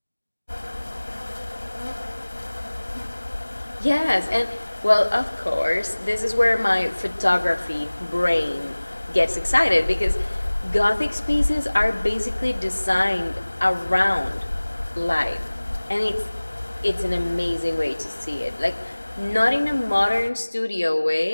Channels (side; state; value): both; inverted; correlation -1.00